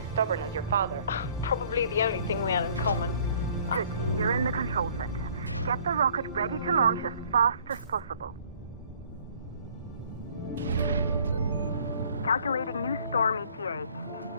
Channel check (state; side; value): inverted; both; correlation -0.56